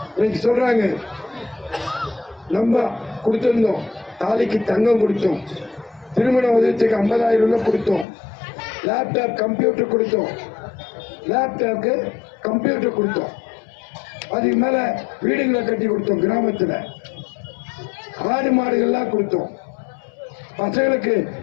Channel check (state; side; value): drops out; right; at 8.1 s